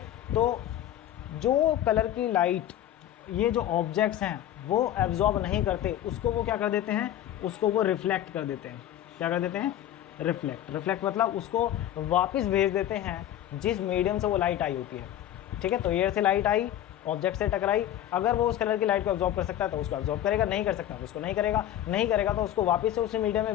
तो जो कलर की लाइट ये जो ऑब्जेक्ट्स हैं वो एब्जॉर्ब नहीं करते उसको वो क्या कर देते हैं, उसको वो रिफ्लेक्ट कर देते हैं। क्या कर देते हैं, रिफ्लेक्ट मतलब उसको वापस भेज देते हैं जिस मीडियम से वो लाइट आई होती है, ठीक है। तो एयर से लाइट आई, ऑब्जेक्ट से टकराई, अगर वो उस कलर की लाइट को एब्जॉर्ब कर सकता है तो उसको एब्जॉर्ब करेगा, नहीं कर सकता तो उसको नहीं करेगा, नहीं करेगा तो उसको वापस से उसी मीडियम में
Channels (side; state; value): right; quieter; 11.8 dB